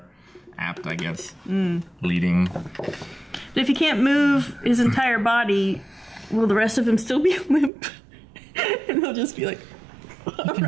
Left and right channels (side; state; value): left; drops out; at 7.7 s